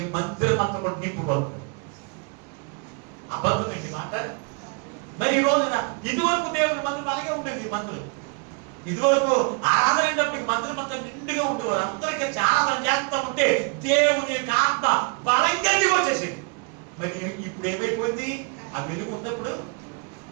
మందిరం అంతా కూడా నింపుబడుతుంది. అబద్ధం ఏంటి మాట? మరి ఈ రోజున ఇదివరకు దేవుని మందిరం అలాగే ఉండేది. ఈ మందిరం ఇదివరకు ఆరాధన అయినప్పటికీ మందిరం అంతా నిండుగా ఉండేవారు. అందరూ కలిసి ఆరాధన చేస్తూ ఉంటే దేవుని యొక్క ఆత్మ బలంగా వచ్చేసింది. మరి ఇప్పుడు ఏమైపోయింది? ఆ వెలుగు ఉన్నప్పుడు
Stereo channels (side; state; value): left; quieter; 34.2 dB